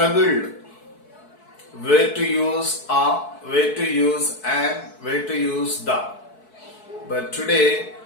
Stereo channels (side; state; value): right; late; 4.6 ms